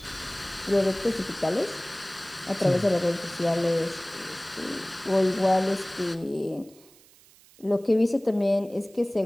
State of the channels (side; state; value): right; noise; hiss, 26 dB below the sound